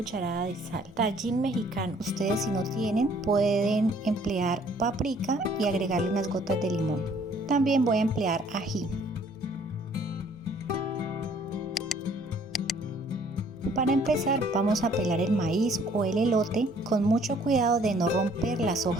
de sal. Tajín mexicano, ustedes si no tienen pueden emplear paprika y agregarle unas gotas de limón. También voy a emplear ají. Para empezar vamos a pelar el maíz o el elote con mucho cuidado de no romper las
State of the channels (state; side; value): normal; both; correlation 0.59